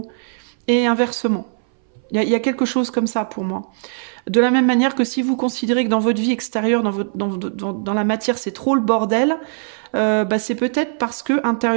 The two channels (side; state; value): left; silent; 61 dB below the other